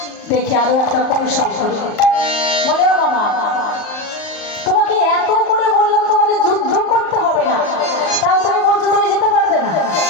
দেখি আরো একটা কৌশল করি। বলে ও মামা, তোমাকে এত করে বললাম তোমাকে যুদ্ধ করতে হবে না, তাও তুমি বলছো তুমি যেতে পারবে না।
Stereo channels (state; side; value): late; right; 38 ms